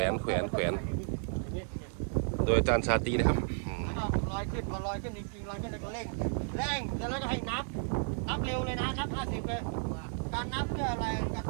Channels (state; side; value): silent; left; 56 dB below the other